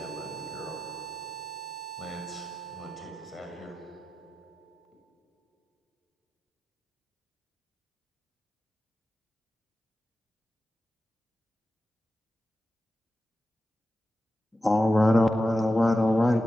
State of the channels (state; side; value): normal; both; correlation 0.92